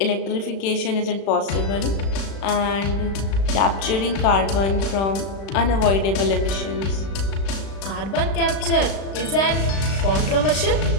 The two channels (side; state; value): right; late; 36 ms